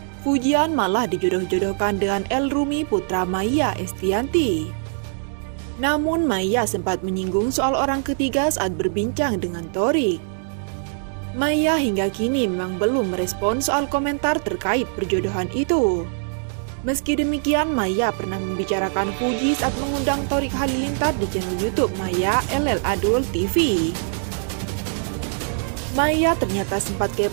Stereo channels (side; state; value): left; silent; digital silence